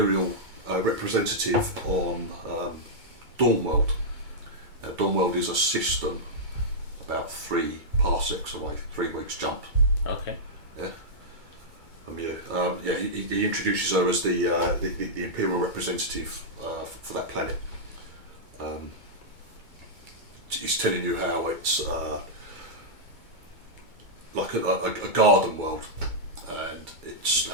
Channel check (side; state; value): left; late; 2.3 ms